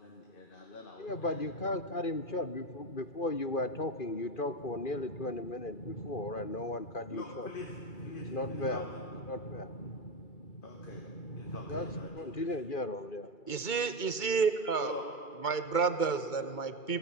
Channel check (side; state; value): right; late; 2.2 ms